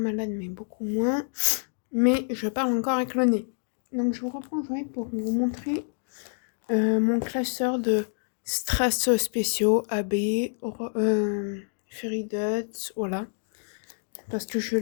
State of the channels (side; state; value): right; silent; digital silence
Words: mais beaucoup moins. Mais je parle encore avec le nez. Donc je vous reprends aujourd'hui pour vous montrer mon classeur de strass spéciaux AB, Fairy Dots, voilà. Parce que je